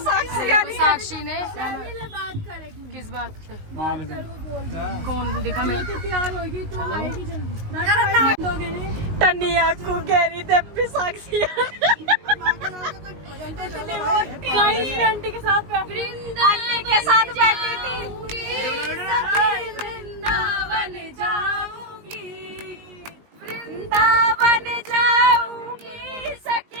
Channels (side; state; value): left; late; 19 ms